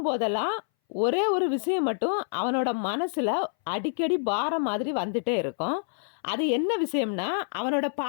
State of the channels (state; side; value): silent; right; 60 dB below the other